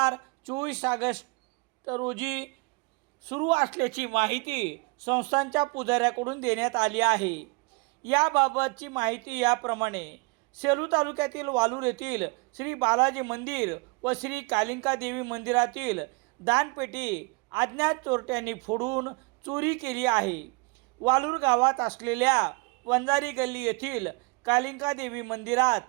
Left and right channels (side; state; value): left; quieter; 28.2 dB